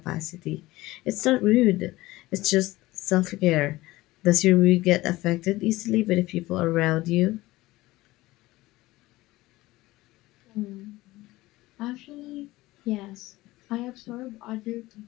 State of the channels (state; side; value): quieter; right; 18.6 dB